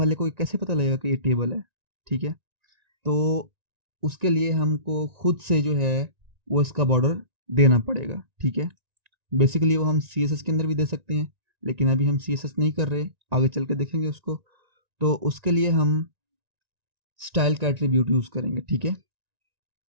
को कैसे पता लगेगा कि ये टेबल है, ठीक है। तो उसके लिए हमको खुद से जो है वो इसका बॉर्डर देना पड़ेगा, ठीक है। बेसिकली वो हम CSS के अंदर भी दे सकते हैं, लेकिन अभी हम CSS नहीं कर रहे, आगे चल के देखेंगे उसको। तो उसके लिए हम स्टाइल का एट्रीब्यूट यूज़ करेंगे, ठीक है।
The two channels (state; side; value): late; left; 1.9 ms